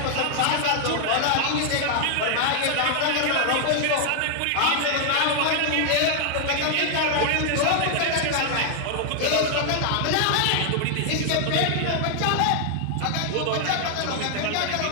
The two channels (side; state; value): both; different; correlation 0.00